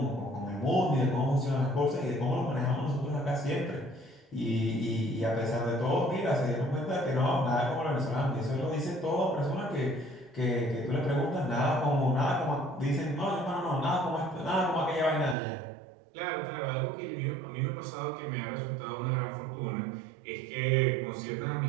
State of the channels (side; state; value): left; drops out; at 15.4 s